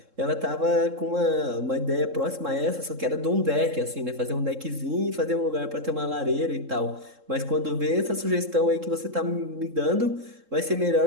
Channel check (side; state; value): left; late; 3.7 ms